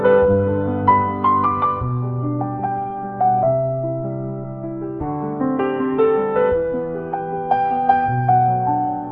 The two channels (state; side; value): identical; both; correlation 1.00